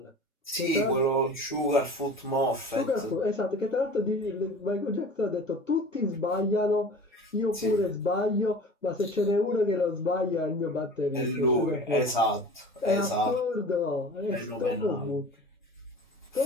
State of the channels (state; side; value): normal; both; correlation 0.39